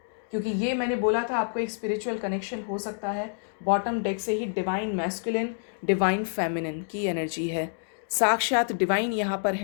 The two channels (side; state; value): right; silent; digital silence